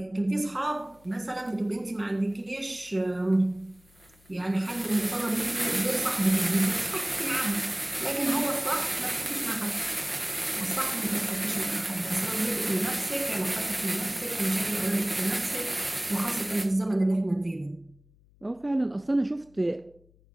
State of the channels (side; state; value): left; noise; hum, 29 dB below the sound